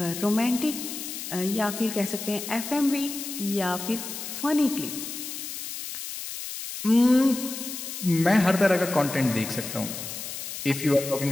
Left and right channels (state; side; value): noise; left; hiss, 8 dB below the sound